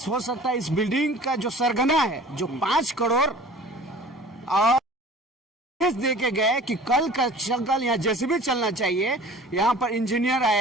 हो सकता है इस बिल्डिंग का जो सरगना है, जो 5 करोड़ और दे के गए कि कल का कल यहाँ जैसे भी चलना चाहिए। यहाँ पर इंजीनियर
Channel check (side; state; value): both; normal; correlation 0.45